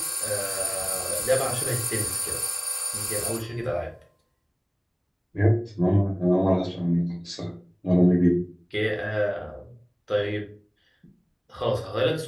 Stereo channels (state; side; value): identical; both; correlation 1.00